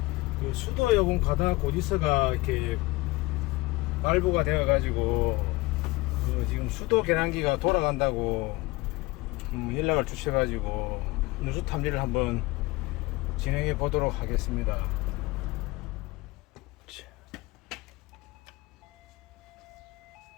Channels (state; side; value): quieter; right; 21.7 dB